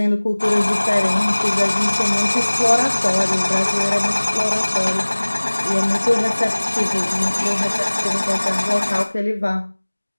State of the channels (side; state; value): both; inverted; correlation -1.00